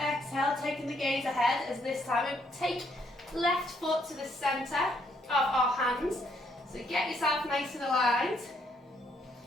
taking the gaze ahead as this time we take left foot to the centre of our hands. So get yourself nice and aligned.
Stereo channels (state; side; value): normal; both; correlation 0.72